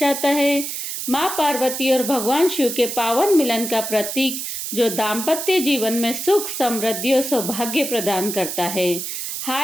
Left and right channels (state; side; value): noise; right; hiss, 5 dB below the sound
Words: है। माँ पार्वती और भगवान शिव के पावन मिलन का प्रतीक, जो दाम्पत्य जीवन में सुख, समृद्धि और सौभाग्य प्रदान करता है।